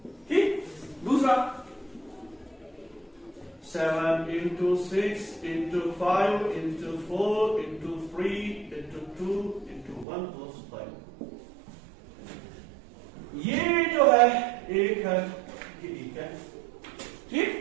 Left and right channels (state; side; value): drops out; left; at 10.1 s